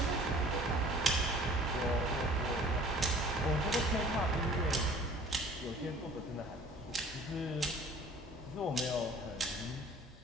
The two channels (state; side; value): normal; both; correlation 0.50